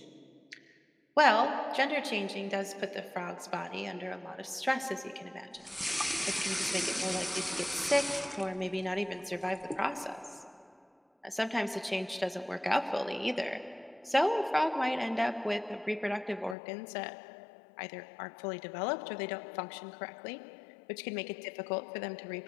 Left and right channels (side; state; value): right; drops out; at 16.6 s